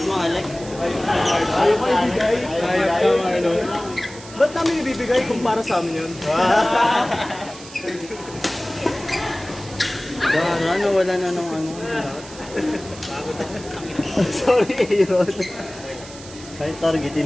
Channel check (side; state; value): right; noise; hiss, 17 dB below the sound